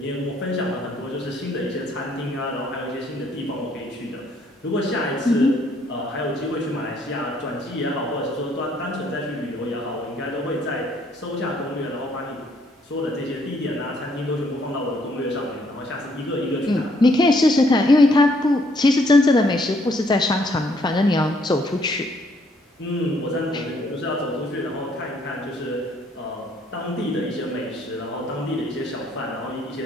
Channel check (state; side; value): normal; both; correlation 0.67